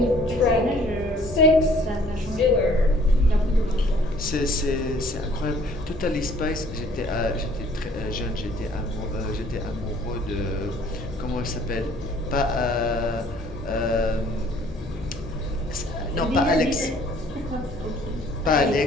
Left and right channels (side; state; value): both; normal; correlation 0.57